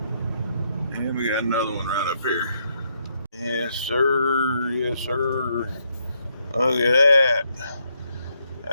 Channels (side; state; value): both; inverted; correlation -0.76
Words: And we got another one right up here. Yes, sir. Yes, sir. Look at that.